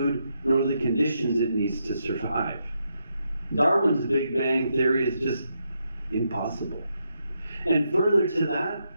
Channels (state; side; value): inverted; both; correlation -0.81